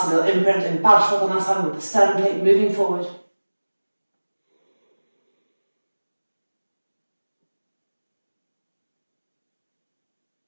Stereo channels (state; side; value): inverted; both; correlation -1.00